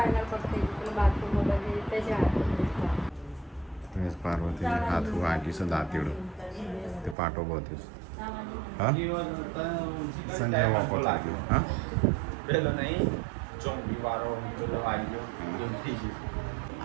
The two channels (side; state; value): left; drops out; at 7.2 s